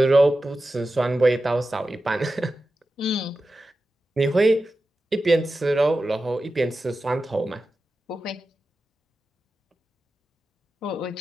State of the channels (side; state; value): both; normal; correlation 0.92